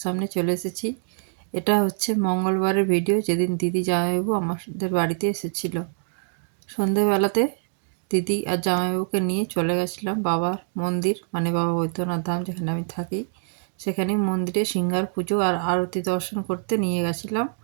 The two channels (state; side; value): silent; left; digital silence